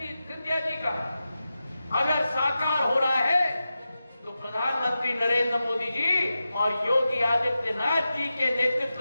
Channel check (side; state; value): both; inverted; correlation -0.92